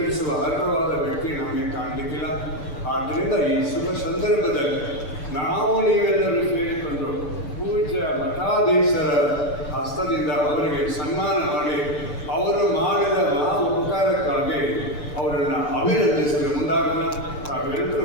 ಅರ್ಹವಾದ ವ್ಯಕ್ತಿ ನಮಗೆ ಕಾಣಲಿಕ್ಕಿಲ್ಲ. ಆದ್ದರಿಂದ ಈ ಶುಭ ಸಂದರ್ಭದಲ್ಲಿ ನಾವು ನೀವೆಲ್ಲರೂ ಸೇರಿಕೊಂಡು ಪೂಜ್ಯ ಮಠಾಧೀಶರ ಹಸ್ತದಿಂದ ಅವರಿಗೆ ಸನ್ಮಾನ ಮಾಡಿ ಅವರು ಮಾಡಿದ ಮಹಾ ಉಪಕಾರಕ್ಕಾಗಿ ಅವರನ್ನು ಅಭಿನಂದಿಸಲು ಮುಂದಾಗೋಣ. ತಾವೆಲ್ಲರೂ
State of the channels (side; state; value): right; late; 6.8 ms